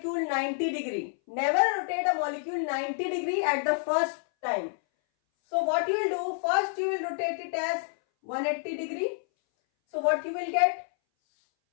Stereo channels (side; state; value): right; silent; 59 dB below the other